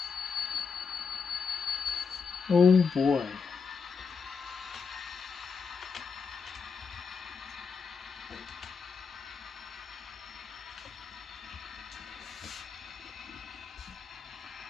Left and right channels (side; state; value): right; quieter; 5.5 dB